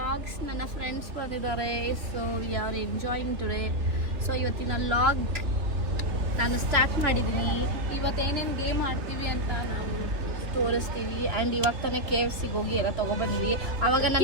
ನನ್ನ friends ಬಂದಿದ್ದಾರೆ, so we are enjoying today. So ಇವತ್ತಿನ vlog ನಾನು start ಮಾಡಿದ್ದೀನಿ. ಇವತ್ತೇನೇನು game ಆಡ್ತೀವಿ ಅಂತ ನಾವು ತೋರಿಸ್ತೀವಿ. ಆ್ಯಂಡ್ ಇವಾಗ ತಾನೇ KFC ಹೋಗಿ ಎಲ್ಲ ತೊಗೊಬಂದ್ವಿ. ಅವಾಗ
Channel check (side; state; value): left; late; 3.1 ms